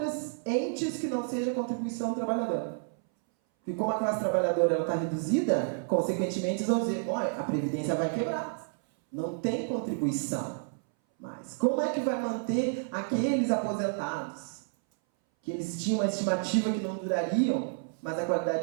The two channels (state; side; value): silent; left; 58 dB below the other